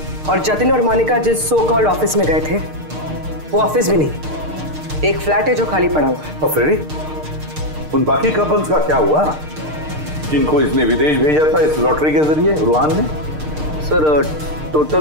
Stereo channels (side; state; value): left; late; 6.6 ms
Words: और जतिन और मोनिका जिस सो कॉल्ड ऑफिस में गए थे वो ऑफिस भी नहीं, एक फ्लैट है जो खाली पड़ा हुआ है। और फ्रेडी, उन बाकी कपल्स का क्या हुआ जिनको इसने विदेश भेजा था इस लॉटरी के जरिए रूहान ने? सर,